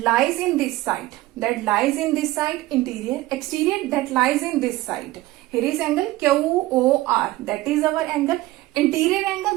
lies in this side. That lies in this side, interior. Exterior that lies in this side. Here is angle QOR. That is our angle. Interior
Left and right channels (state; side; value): quieter; left; 17.7 dB